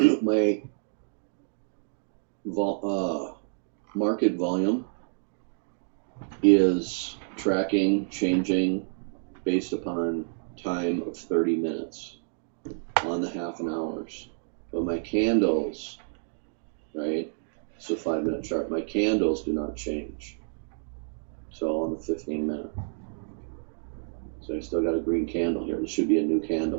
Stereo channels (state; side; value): silent; left; digital silence